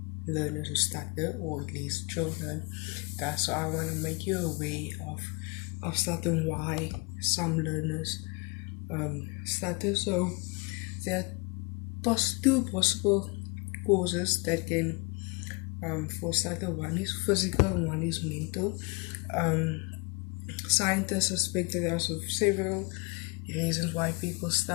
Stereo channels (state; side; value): quieter; right; 29.2 dB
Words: learners who stutter, or at least children. So I want to make you aware of stutter and why some learners stutter. So there are two possible causes that can for stutter. One is physical and one is mental. Um, Scientists suspect that there are several reasons why people